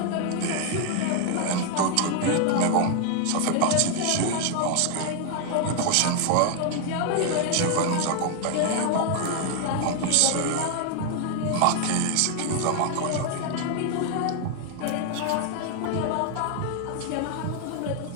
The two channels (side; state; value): both; different; correlation 0.00